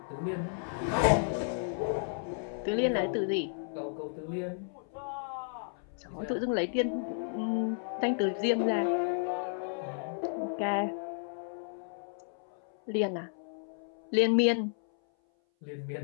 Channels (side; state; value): right; silent; 56 dB below the other